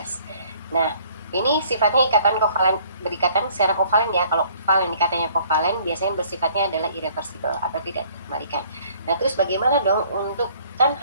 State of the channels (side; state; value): both; inverted; correlation -0.57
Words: Nah, ini sifatnya ikatan kovalen, berikatan secara kovalen ya. Kalau kovalen, ikatannya kovalen biasanya bersifatnya adalah irreversible atau tidak dikembalikan. Nah, terus bagaimana dong untuk, kan